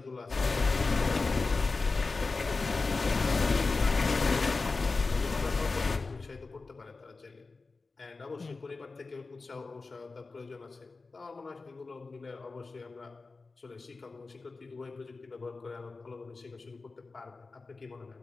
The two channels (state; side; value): quieter; right; 3.9 dB